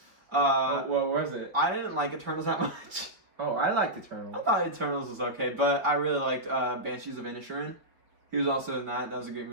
it? I didn't like Eternals that much. Oh, I liked Eternals. I thought Eternals was okay, but I really liked Banshees of Inisherin. He was also in that. That was a great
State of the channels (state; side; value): late; left; 4.9 ms